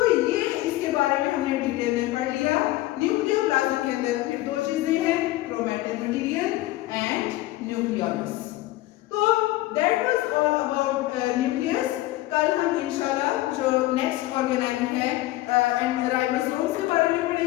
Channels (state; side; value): quieter; right; 17.1 dB